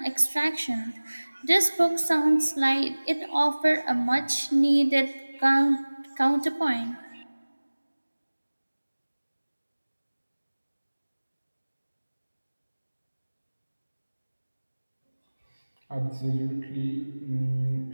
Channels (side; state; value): both; inverted; correlation -1.00